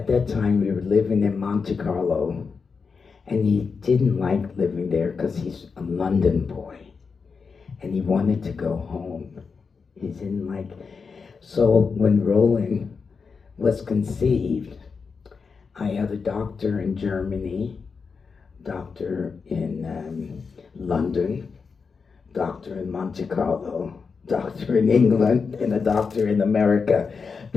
that time, we were living in Monte Carlo, and he didn't like living there because he's a London boy, and he wanted to go home. He didn't like. So when Roland was conceived, I had a doctor in Germany, doctor in London, doctor in Monte Carlo, doctor in England, and a doctor in America,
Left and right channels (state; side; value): quieter; right; 5.2 dB